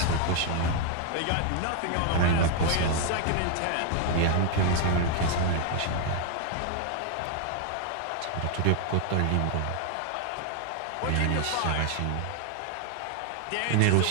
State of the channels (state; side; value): different; both; correlation 0.00